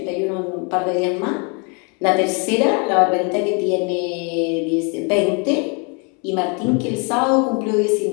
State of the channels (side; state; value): right; quieter; 34.9 dB